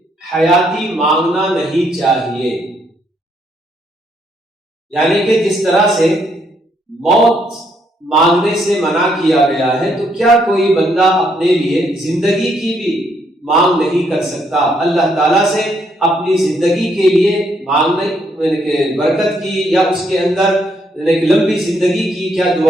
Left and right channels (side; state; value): both; normal; correlation 0.73